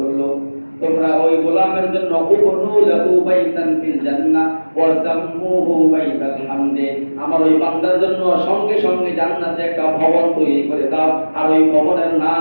তোমরা ওই গোলামের জন্য উবনু লাহু বাইতান ফিল জান্নাহ ওয়া সাম্মুহু বাইতাল হামদে, আমার ওই বান্দার জন্য সঙ্গে সঙ্গে জান্নাতে একটা ভবন তৈরি করে দাও, আর ওই ভবনের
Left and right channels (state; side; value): inverted; both; correlation -1.00